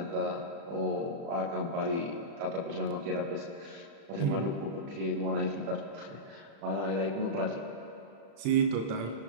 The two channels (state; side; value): late; left; 36 ms